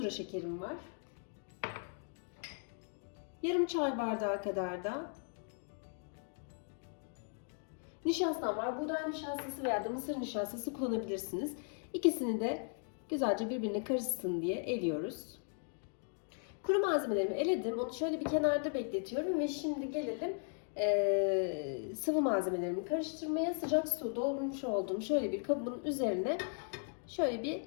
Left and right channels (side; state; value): right; silent; 53 dB below the other